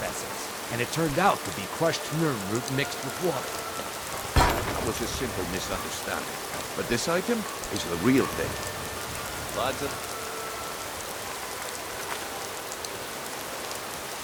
essence. And it turned out to be crushed nerve root mixed with water. That was a simple misunderstanding. But this item is the real thing. Lads,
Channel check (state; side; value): identical; both; correlation 1.00